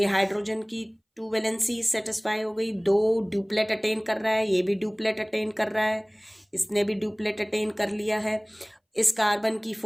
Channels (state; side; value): identical; both; correlation 1.00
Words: हाइड्रोजन की 2 वैलेंसी सेटिस्फाई हो गई. 2 ड्यूप्लेट अटेन कर रहा है, ये भी ड्यूप्लेट अटेन कर रहा है, इसने भी ड्यूप्लेट अटेन कर लिया है. इस कार्बन की